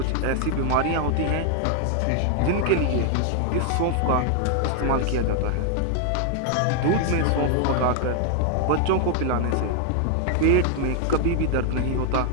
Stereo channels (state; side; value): different; both; correlation 0.00